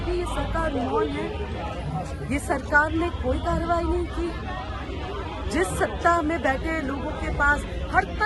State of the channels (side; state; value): both; identical; correlation 1.00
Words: भी ये सरकार मौन है। ये सरकार ने कोई कार्रवाई नहीं की। जिस सत्ता में बैठे लोगों के पास हर